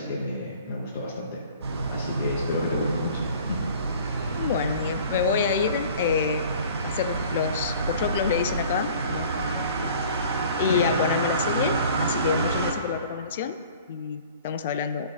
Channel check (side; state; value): both; inverted; correlation -0.48